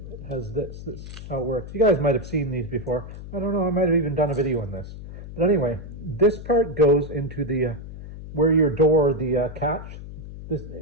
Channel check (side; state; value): left; noise; hum, 12 dB below the sound